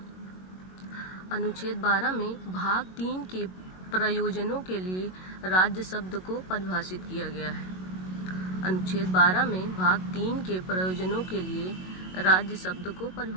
12 में भाग 3 के प्रयोजनों के लिए राज्य शब्द को परिभाषित किया गया है। अनुच्छेद 12 में भाग 3 के प्रयोजनों के लिए राज्य शब्द को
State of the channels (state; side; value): late; right; 22 ms